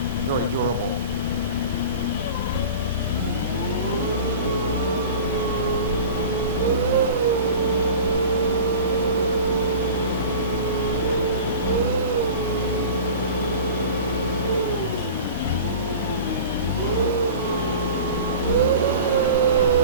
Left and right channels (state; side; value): inverted; both; correlation -0.37